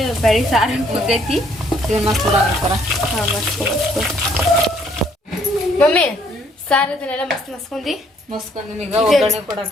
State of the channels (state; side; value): normal; both; correlation 0.65